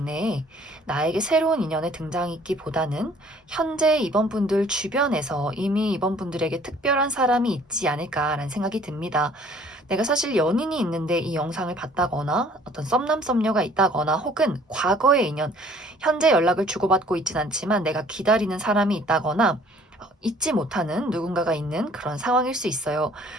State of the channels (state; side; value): normal; both; correlation 0.55